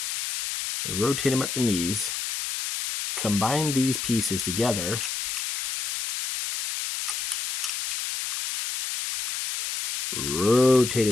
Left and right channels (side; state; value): left; noise; hiss, 3 dB below the sound